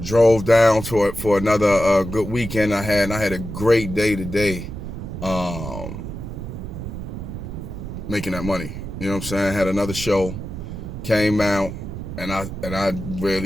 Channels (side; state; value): right; noise; rumble, 8 dB below the sound